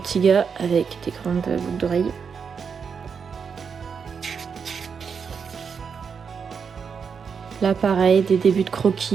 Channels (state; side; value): quieter; left; 6.2 dB